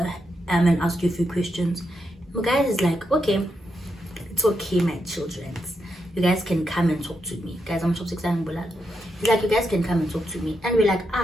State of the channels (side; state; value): both; normal; correlation 0.83